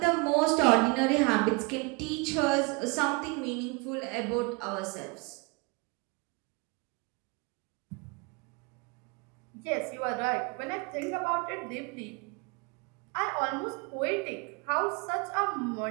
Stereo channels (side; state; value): left; quieter; 29.1 dB